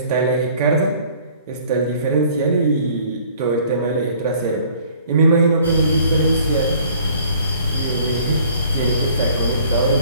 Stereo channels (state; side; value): inverted; both; correlation -0.55